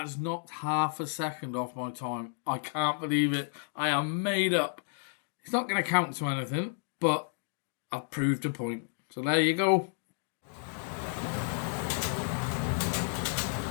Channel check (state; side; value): silent; right; digital silence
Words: knocked half a second off my time. I can't believe it. I am made up. It's not going to count to anything, but I've proved a point. So there you go.